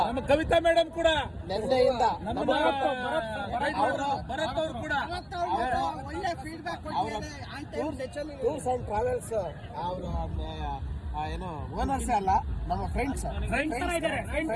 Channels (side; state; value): both; identical; correlation 1.00